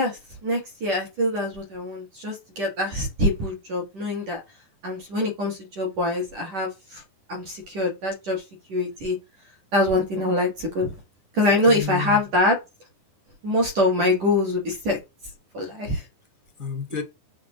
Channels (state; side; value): late; left; 10 ms